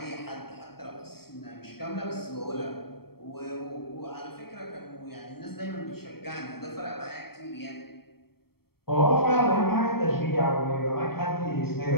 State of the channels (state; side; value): late; right; 0.95 ms